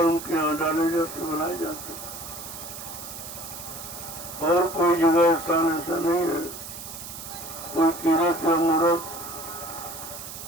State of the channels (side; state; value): right; noise; hiss, 11 dB below the sound